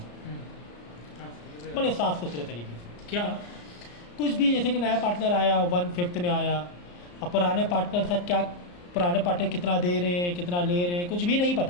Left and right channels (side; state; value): right; late; 34 ms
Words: बड़े साफ सुथरे तरीके से। क्या कुछ भी, जैसे कि नया पार्टनर आया 1/5 में आया, अब पुराने पार्टनर साथ क्या, पुराने पार्टनर कितना दे रहे हैं कितना ले रहे हैं कुछ भी नहीं